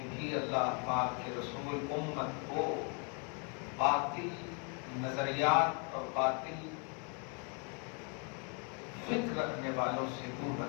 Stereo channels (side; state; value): right; quieter; 36.6 dB